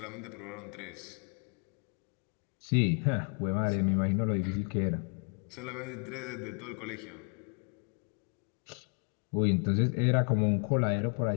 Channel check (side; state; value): right; quieter; 39.6 dB